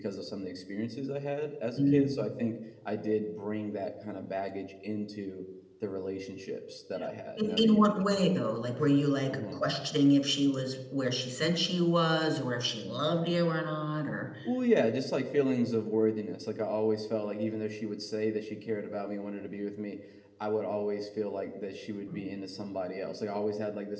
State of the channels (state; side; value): identical; both; correlation 1.00